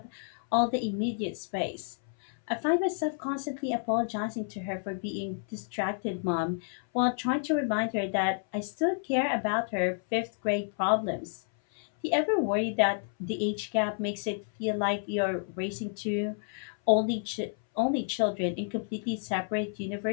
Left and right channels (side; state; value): right; silent; 58 dB below the other